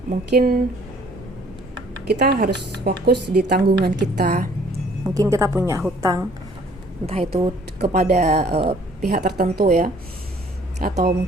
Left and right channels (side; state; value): both; normal; correlation 0.58